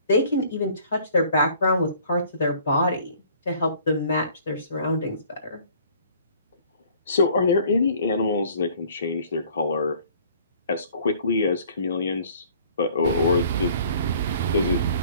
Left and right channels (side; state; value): both; inverted; correlation -0.54